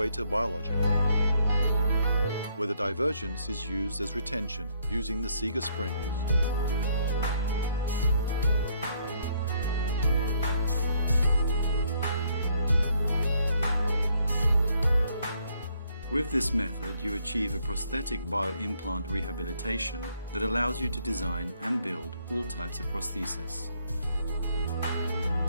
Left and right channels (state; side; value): inverted; both; correlation -0.69